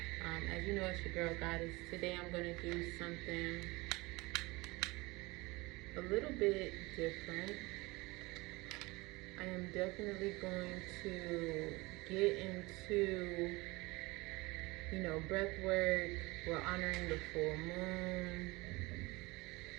As you know, it's your girl Goddess. Today I'm going to do something a little bit different. I am definitely going to get into, breath work. We're honoring the full moon.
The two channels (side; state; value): left; quieter; 23.1 dB